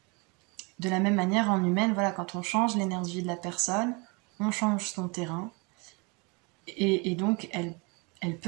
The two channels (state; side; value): quieter; left; 29.7 dB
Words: la même manière, en humaine, voilà, quand on change l'énergie de la personne, on change son terrain, et donc elle